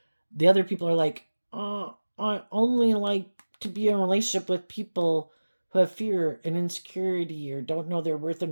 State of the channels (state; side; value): inverted; both; correlation -1.00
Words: the other people are like, I only like to be in a relationship with people who have fear and insecurity or don't know their worth